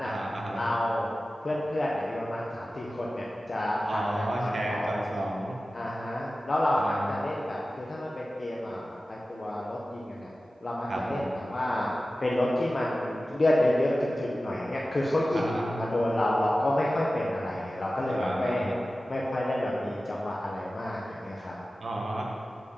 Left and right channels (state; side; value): normal; both; correlation 0.95